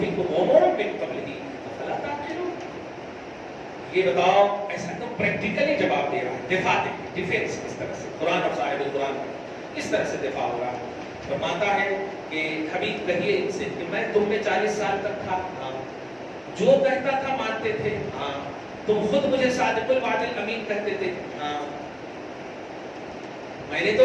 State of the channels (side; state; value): both; identical; correlation 1.00